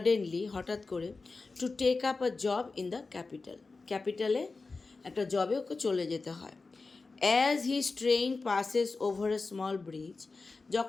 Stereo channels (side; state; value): right; quieter; 3.9 dB